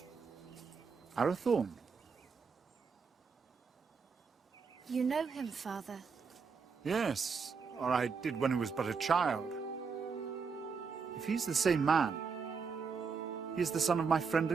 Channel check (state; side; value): quieter; left; 5.5 dB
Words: Arathorn? You know him, father? Yes, or I did when he was but a child. If he's the same man, he is the son of my friend